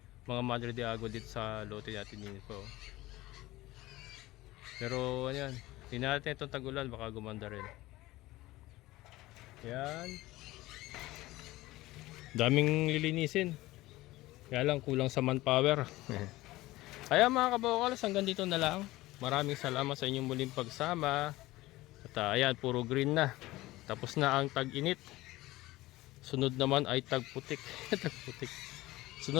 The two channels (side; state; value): right; quieter; 18.2 dB